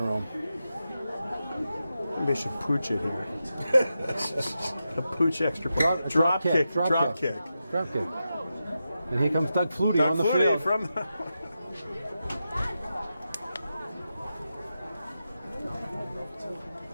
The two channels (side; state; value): both; inverted; correlation -0.89